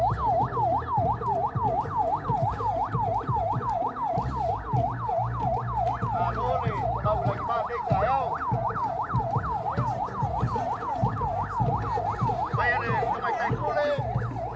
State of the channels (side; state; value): both; identical; correlation 1.00